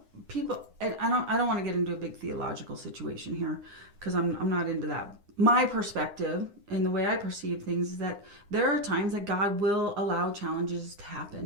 people, and I don't want to get into a big theological situation here because I'm not into that. My perspective and the way I perceive things is that there are times that God will allow challenges to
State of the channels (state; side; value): late; left; 9.7 ms